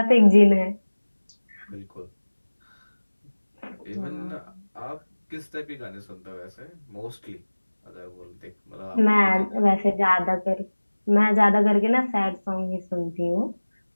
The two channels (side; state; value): both; inverted; correlation -1.00